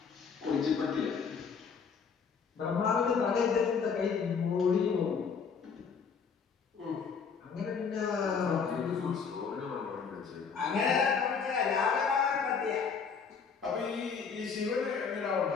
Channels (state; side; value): quieter; right; 6.0 dB